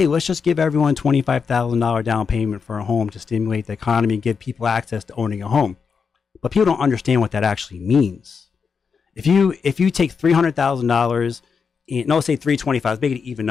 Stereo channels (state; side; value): quieter; right; 5.8 dB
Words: let's just give everyone $25,000 down payment for a home to stimulate the economy and give people access to owning a home. But people don't understand what that actually means. If you take $300,000, no, say $325,000, let's make it an even